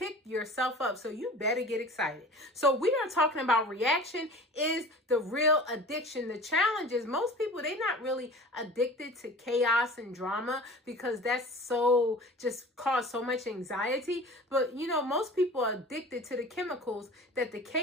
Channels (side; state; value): both; normal; correlation 0.40